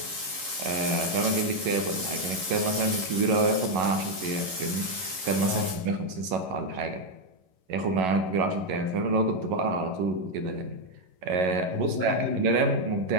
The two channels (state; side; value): late; left; 11 ms